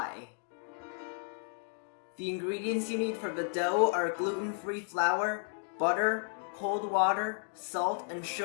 The ingredients you need for the dough are gluten-free flour, butter, cold water, salt, and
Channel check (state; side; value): silent; right; 56 dB below the other